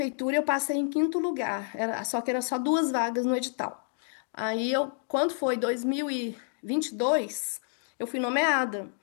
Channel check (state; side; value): silent; right; digital silence